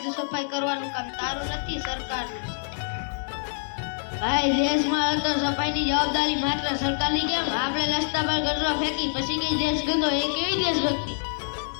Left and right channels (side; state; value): right; silent; digital silence